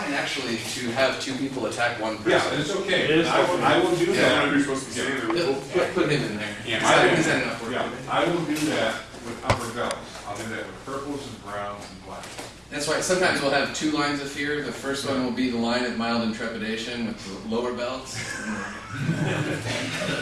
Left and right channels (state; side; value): identical; both; correlation 1.00